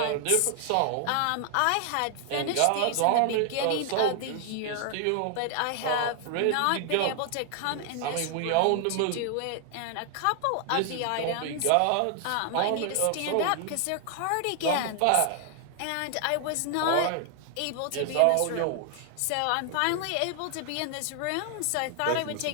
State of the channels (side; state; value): both; different; correlation 0.00